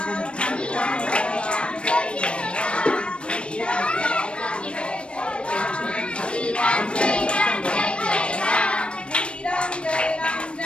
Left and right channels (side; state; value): right; late; 0.058 ms